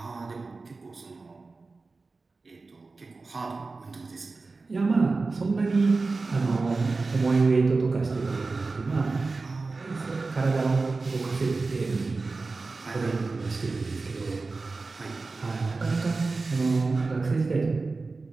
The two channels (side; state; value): left; quieter; 3.8 dB